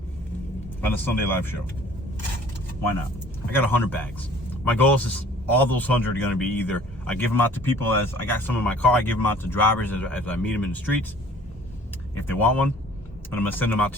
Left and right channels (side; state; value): both; normal; correlation 0.52